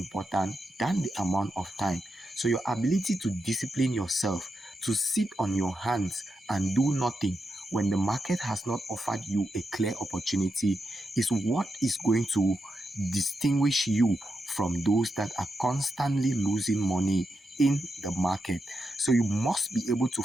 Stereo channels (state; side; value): normal; both; correlation 0.86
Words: than the amount of time. So your ability to discipline yourself, to sit on your hands and do nothing when the market has not offered you a clear opportunity, is what is going to distinguish you from those that are constantly losing money in the market. So you must be able to